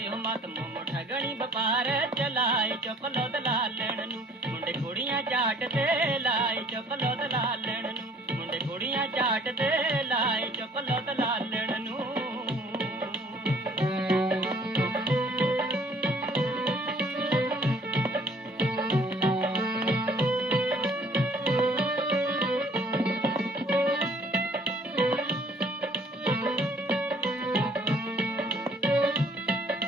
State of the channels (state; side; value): normal; both; correlation 0.57